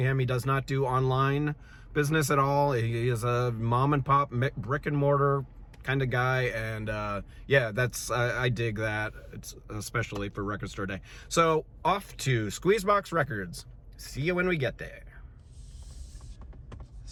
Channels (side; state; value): both; identical; correlation 1.00